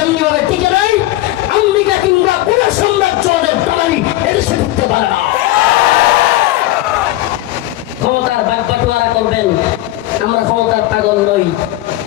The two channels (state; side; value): quieter; right; 16.4 dB